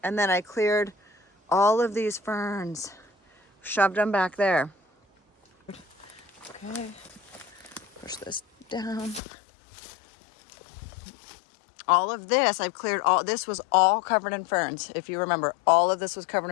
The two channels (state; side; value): drops out; right; at 9.2 s